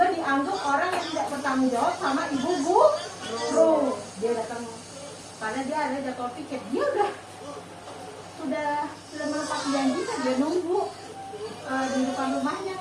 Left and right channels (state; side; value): identical; both; correlation 1.00